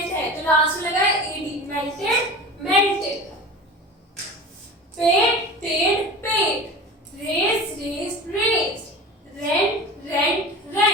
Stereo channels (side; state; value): both; normal; correlation 0.34